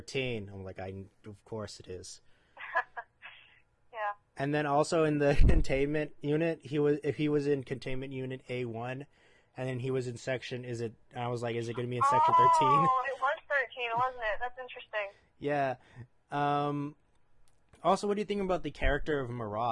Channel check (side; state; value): both; identical; correlation 1.00